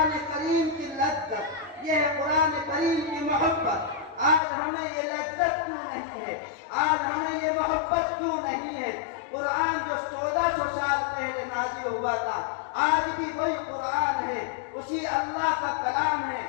کریم کی لذت، یہ ہے قرآن کریم کی محبت۔ آج ہمیں یہ لذت کیوں نہیں ہے؟ آج ہمیں یہ محبت کیوں نہیں ہے؟ قرآن جو 1400 سال پہلے نازل ہوا تھا، آج بھی وہی قرآن ہے، اسی اللہ کا کلام ہے،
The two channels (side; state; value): right; drops out; at 4.4 s